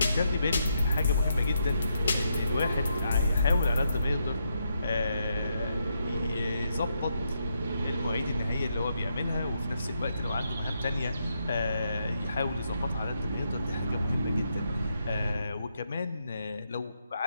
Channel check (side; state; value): both; inverted; correlation -0.80